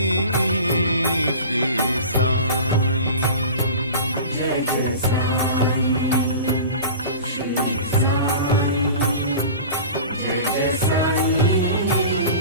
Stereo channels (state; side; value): inverted; both; correlation -0.36